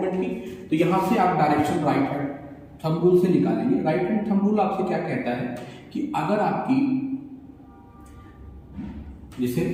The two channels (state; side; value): identical; both; correlation 1.00